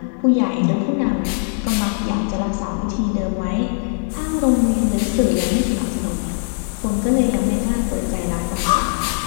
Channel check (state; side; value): silent; right; digital silence